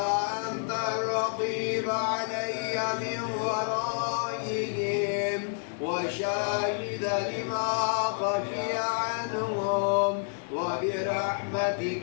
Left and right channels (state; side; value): silent; right; digital silence